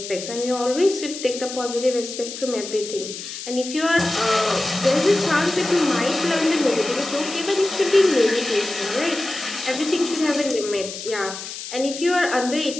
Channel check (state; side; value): noise; left; hiss, 9 dB below the sound